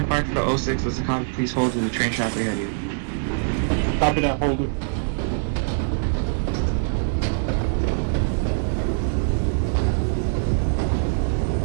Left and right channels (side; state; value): left; silent; digital silence